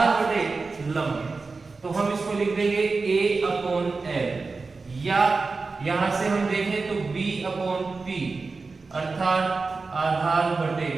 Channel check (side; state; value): left; quieter; 4.1 dB